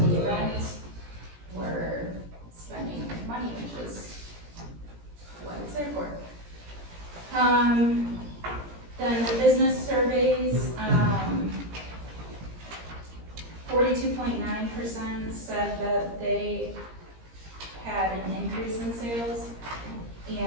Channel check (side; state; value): left; late; 17 ms